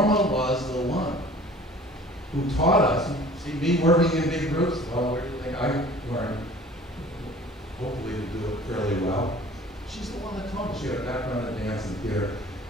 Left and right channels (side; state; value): both; normal; correlation 0.47